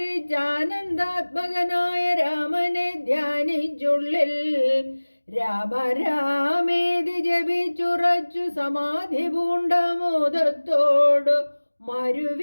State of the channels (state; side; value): inverted; both; correlation -1.00